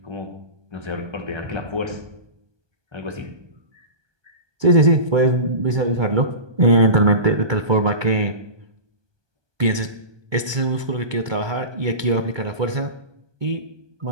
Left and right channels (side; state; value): left; late; 1.2 ms